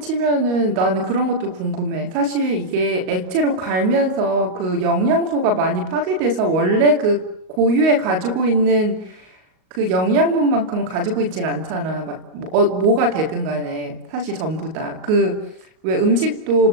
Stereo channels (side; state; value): left; late; 38 ms